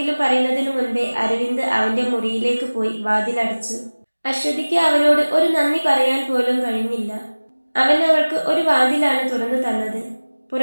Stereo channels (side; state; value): both; inverted; correlation -1.00